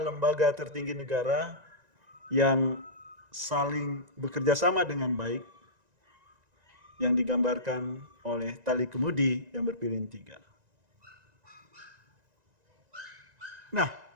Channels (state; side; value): late; left; 1.9 ms